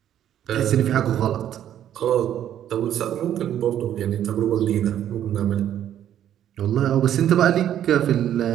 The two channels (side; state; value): left; quieter; 10.8 dB